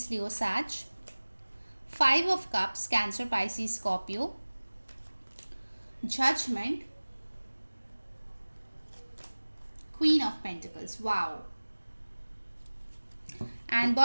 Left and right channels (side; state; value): both; inverted; correlation -1.00